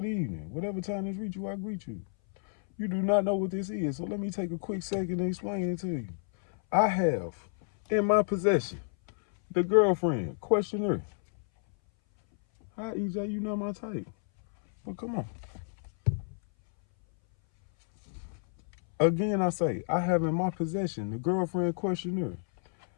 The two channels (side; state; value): right; silent; 58 dB below the other